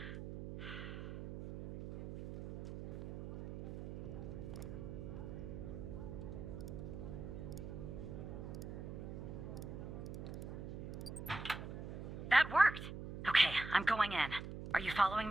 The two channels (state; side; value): noise; right; hum, 8 dB below the sound